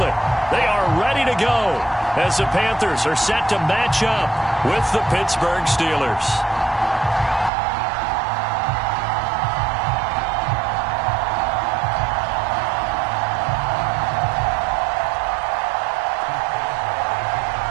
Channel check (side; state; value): left; drops out; at 7.5 s